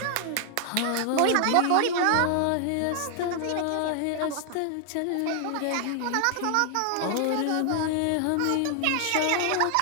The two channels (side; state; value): both; different; correlation 0.00